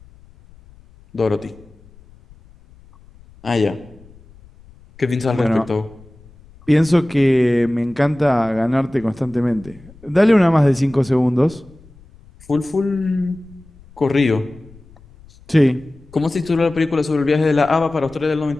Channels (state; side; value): noise; left; rumble, 25 dB below the sound